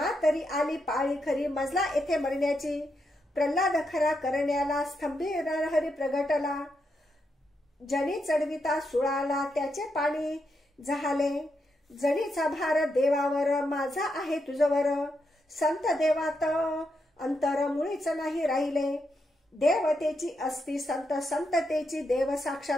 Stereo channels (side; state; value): both; normal; correlation 0.82